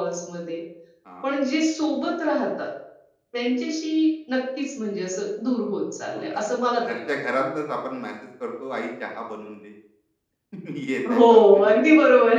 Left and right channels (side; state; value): both; identical; correlation 1.00